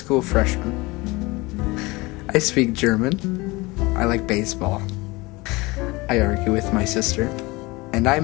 freshman. I speak German. I like baseball. I argue with my sister. And I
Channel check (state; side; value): quieter; right; 23.0 dB